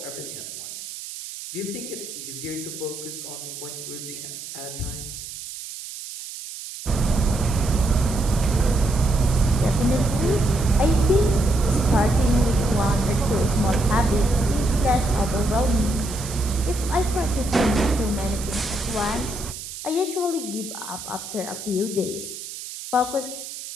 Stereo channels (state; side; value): noise; right; hiss, 10 dB below the sound